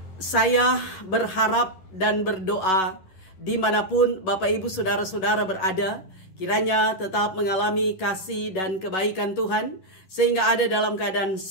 Saya berharap dan berdoa dimanapun Bapak Ibu Saudara-saudara berada, kiranya tetap mengalami kasih dan kebaikan Tuhan, sehingga ada dalam keadaan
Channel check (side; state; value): right; late; 11 ms